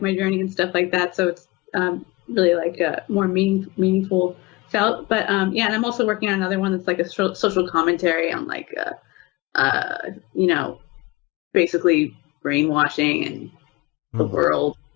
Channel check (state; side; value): quieter; right; 22.4 dB